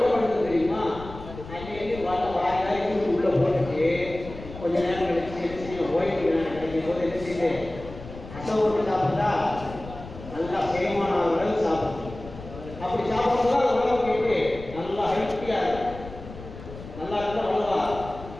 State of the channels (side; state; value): left; noise; rumble, 14 dB below the sound